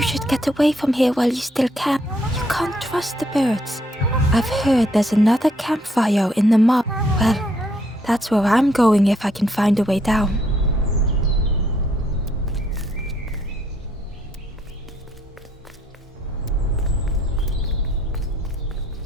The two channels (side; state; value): both; normal; correlation 0.70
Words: should get away from here while you still can. You can't trust the birds. I've heard there's another campfire in the mob. Well, that's where I'm going if I can find a way down.